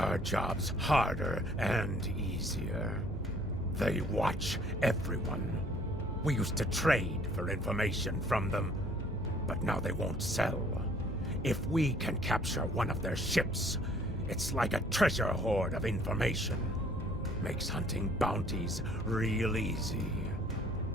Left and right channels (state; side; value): normal; both; correlation 0.58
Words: jobs harder and easier. They watch everyone. We used to trade for information from them, but now they won't sell. If we can capture one of their ships, it's like a treasure hoard of information. Makes hunting bounties real easy.